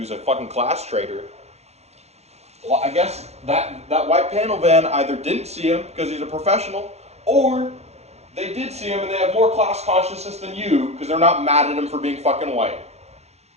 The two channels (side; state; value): left; late; 0.31 ms